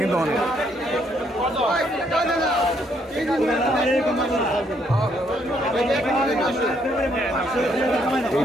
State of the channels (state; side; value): normal; both; correlation 0.71